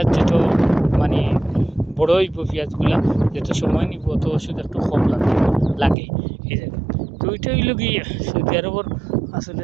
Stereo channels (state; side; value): drops out; left; at 6.0 s